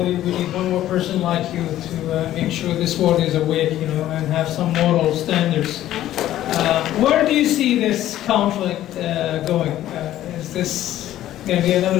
We need one more person like you to make sure this world is awake, and have some moral standards. Where do you see this conflict going? Is this going to be another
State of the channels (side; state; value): right; quieter; 13.2 dB